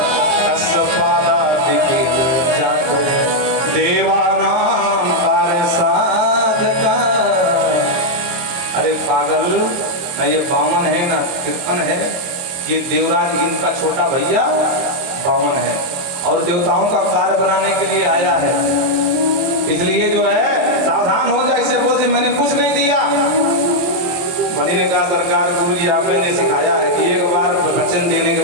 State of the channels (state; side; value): late; left; 22 ms